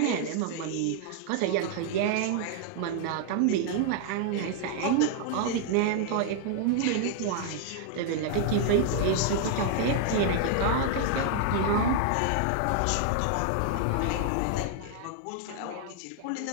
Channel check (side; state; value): both; different; correlation 0.00